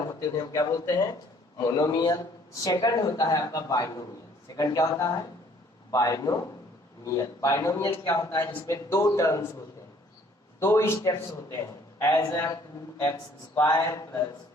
होते हैं हम क्या बोलते हैं? मोनोमियल। सेकंड होता है आपका बाइनोमियल। सेकंड क्या होता है? बाइनोमियल। बाइनोमियल क्या होता है? जिसमें दो टर्म्स होते हैं, दो स्टेप्स होते हैं, एज 2x² प्लस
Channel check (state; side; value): normal; both; correlation 0.59